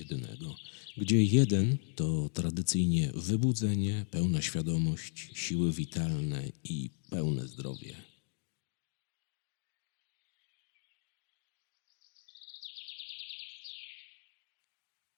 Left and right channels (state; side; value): silent; right; 54 dB below the other